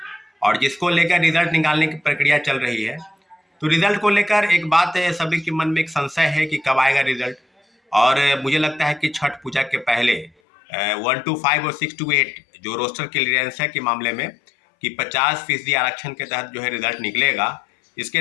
और जिसको लेकर रिजल्ट निकालने की प्रक्रिया चल रही है। तो रिजल्ट को लेकर एक बात है, सभी के मन में एक संशय है कि कब आएगा रिजल्ट। और मुझे लगता है कि छठ पूजा के पहले 1 to 5 और 6 to 8 जो रोस्टर क्लियरेंस है के मामले में कि 50% आरक्षण के तहत जो है रिजल्ट निकलेगा।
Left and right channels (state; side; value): drops out; right; at 10.3 s